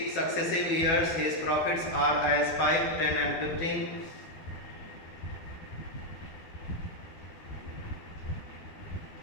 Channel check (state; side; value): late; right; 12 ms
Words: successive years, his profits are as 5, 10 and 15.